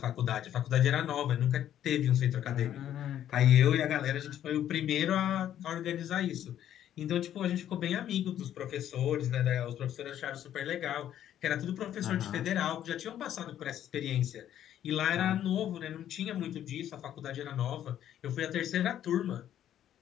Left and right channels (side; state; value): right; quieter; 11.0 dB